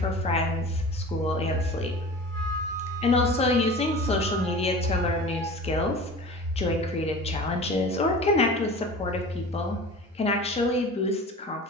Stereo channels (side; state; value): both; normal; correlation 0.38